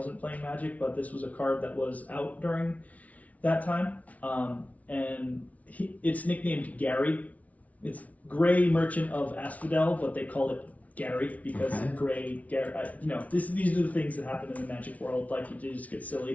playing Magic, but this was a card that was out during that time. And it's nicknamed Gary. It's Grey Merchant of Asphodel, but they call it Gary because Gray, Gary. These are the things that happen in the Magic world. Like you just get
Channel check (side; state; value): right; late; 0.069 ms